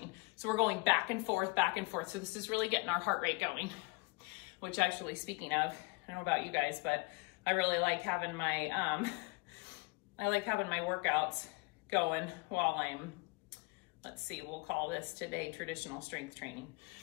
So we're going back and forth, back and forth. So this is really getting our heart rate going. Which actually, speaking of, I don't know about you guys, but I really like having my, workouts going while I'm, let's see, we'll call this today traditional strength training.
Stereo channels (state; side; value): quieter; right; 28.0 dB